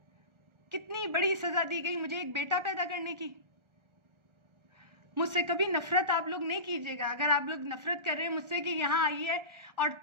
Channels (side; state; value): left; late; 1.4 ms